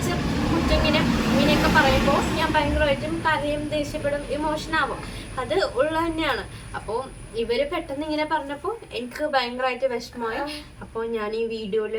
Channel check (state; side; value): identical; both; correlation 1.00